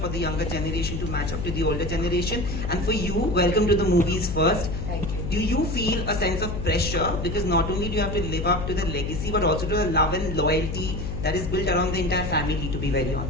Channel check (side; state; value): left; noise; hum, 4 dB below the sound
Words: the younger generation to match up to the older generation? And for you, welcome to the movies first. Thank you. Do you feel a sense of pressure because not only do you have to live up to the legacy but also to the love and loyalty that is built around the entire family, to be very